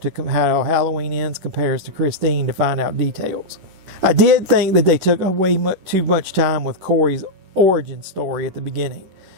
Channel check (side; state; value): left; late; 10 ms